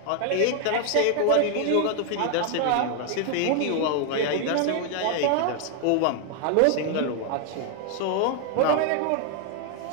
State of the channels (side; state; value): both; different; correlation 0.00